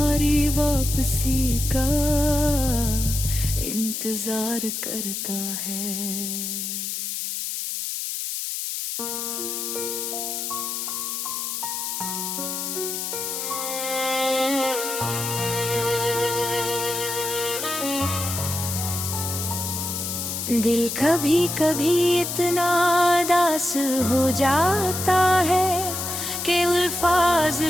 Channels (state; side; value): noise; left; hiss, 3 dB below the sound